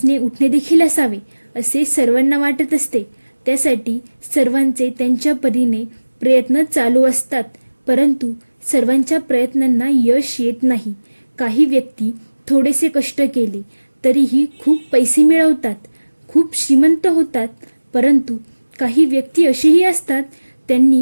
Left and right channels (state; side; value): inverted; both; correlation -1.00